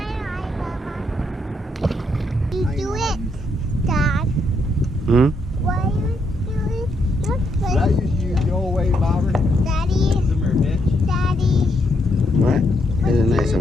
You do it, Dad. Hmm? Why are you doing it. Did I used to use the old way bobber? Daddy? Daddy? What? Here's a nicer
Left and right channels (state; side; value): normal; both; correlation 0.77